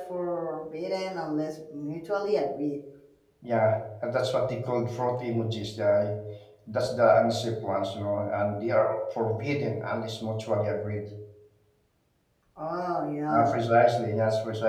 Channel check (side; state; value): both; identical; correlation 1.00